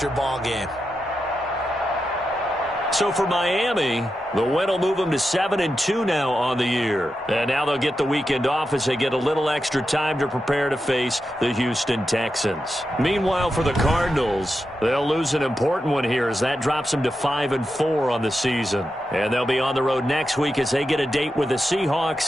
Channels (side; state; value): both; normal; correlation 0.88